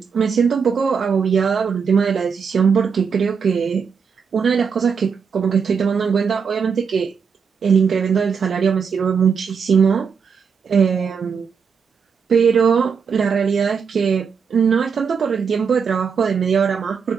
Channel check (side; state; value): left; quieter; 6.2 dB